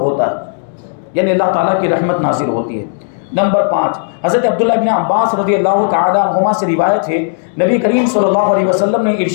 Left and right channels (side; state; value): right; silent; digital silence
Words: ہے، یعنی اللہ تعالیٰ کی رحمت نازل ہوتی ہے. نمبر 5، حضرت عبداللہ ابن عباس رضی اللہ تعالی عنہما سے روایت ہے، نبی کریم صلی اللہ علیہ وسلم نے